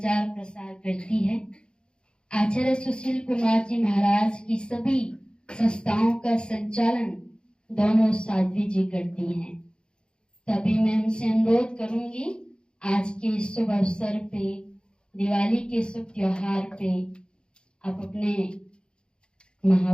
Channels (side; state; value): right; late; 0.051 ms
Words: प्रसार करती है। आचार्य सुशील कुमार जी महाराज की सभी संस्थाओं का संचालन दोनों साध्वी जी करती हैं। तभी मैं उनसे अनुरोध करूंगी, आज के शुभ अवसर पे, दिवाली के शुभ त्योहार पे, आप अपने